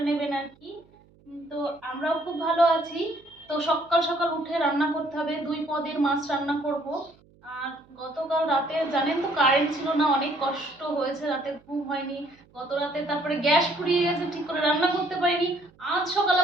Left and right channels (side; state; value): right; noise; hum, 29 dB below the sound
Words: নেবেন আর কি। তো আমরাও খুব ভালো আছি। তো সকাল সকাল উঠে রান্না করতে হবে, 2 পদের মাছ রান্না করব। আর গতকাল রাতে জানেন তো কারেন্ট ছিল না, অনেক কষ্ট হয়েছে, রাতে ঘুম হয়নি গত রাতে। তারপরে গ্যাস ফুরিয়ে গেছে, ঠিক করে রান্না করতে পারিনি। আজ সকাল